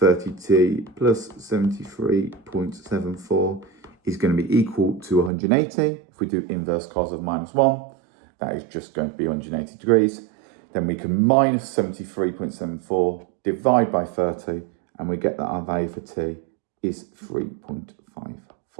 plus 73.74 is going to be equal to 180. If we do inverse cos of minus 1, that is just going to be 180 degrees. Then we can minus 73.74, divide by 30, and we get that our value for t is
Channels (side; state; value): left; drops out; at 5.3 s